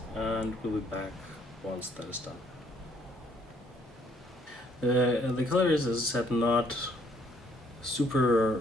and we'll be back once that is done. The color is, as I said, not super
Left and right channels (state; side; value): normal; both; correlation 0.66